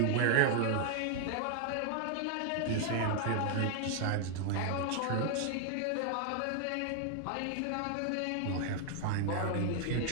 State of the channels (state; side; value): different; both; correlation 0.00